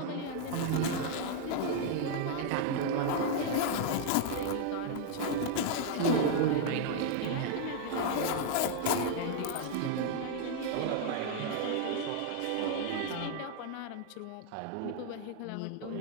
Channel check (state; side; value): different; both; correlation 0.00